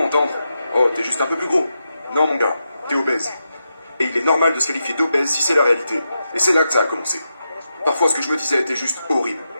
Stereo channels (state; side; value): inverted; both; correlation -0.87